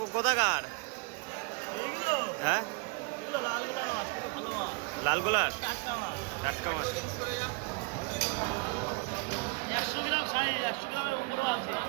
হ্যাঁ, লালগোলার টাটকা মাছ। 100 গ্রাম সাইজ, 100 গ্রামের উপরেও আছে।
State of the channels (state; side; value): quieter; left; 29.0 dB